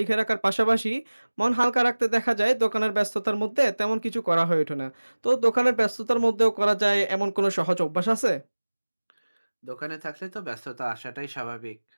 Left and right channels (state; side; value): inverted; both; correlation -1.00